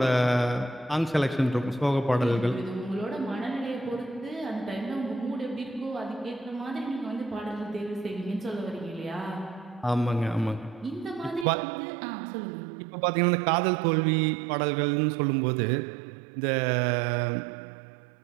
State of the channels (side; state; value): left; drops out; at 11.5 s